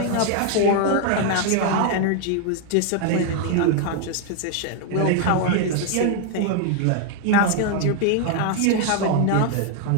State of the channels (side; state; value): both; different; correlation 0.00